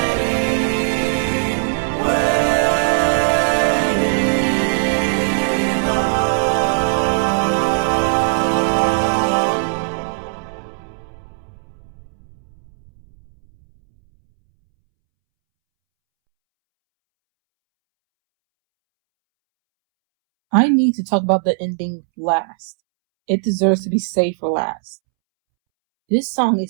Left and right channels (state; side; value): silent; left; 67 dB below the other